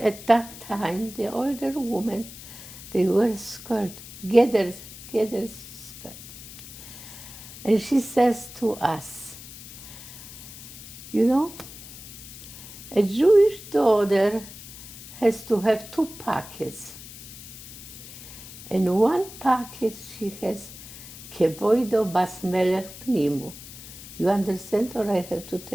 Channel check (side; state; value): left; noise; hiss, 15 dB below the sound